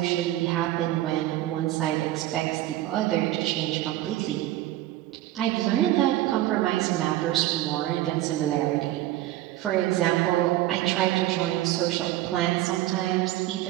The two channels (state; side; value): quieter; left; 14.9 dB